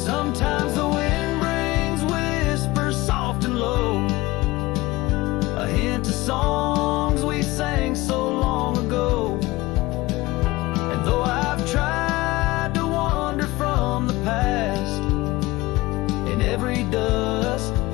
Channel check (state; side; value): quieter; right; 20.0 dB